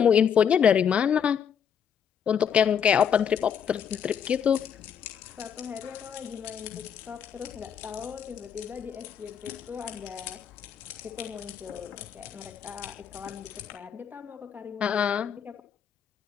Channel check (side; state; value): right; quieter; 7.9 dB